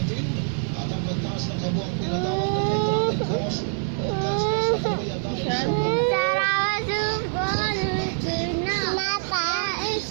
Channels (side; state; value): left; silent; digital silence